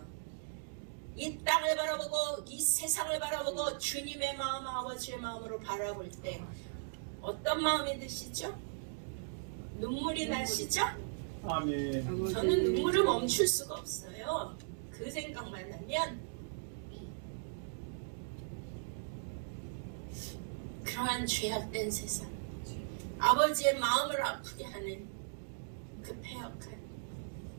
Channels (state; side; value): silent; left; digital silence